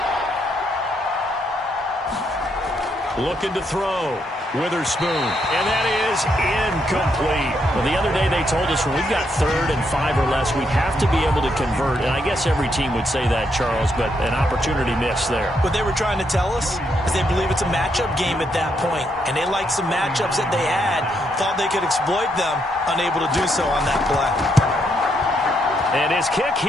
Looking to throw. Witherspoon. And that is incomplete. Well, the other day they told us when we've got 3rd and 5 or less, we have to be able to convert. And I guess every team would say that, Charles, but an opportunity missed there. What they were trying to tell us is they believe it's a matchup game at that point. And they liked some matchups that they had, thought they could exploit them, unable to do so on that play. And his kick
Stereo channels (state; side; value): normal; both; correlation 0.77